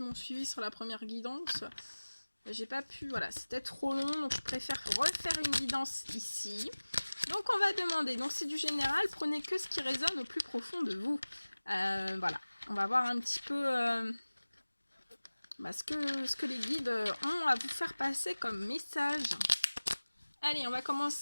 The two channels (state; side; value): inverted; both; correlation -1.00